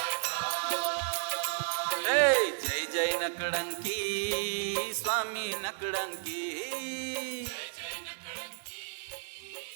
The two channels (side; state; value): left; silent; digital silence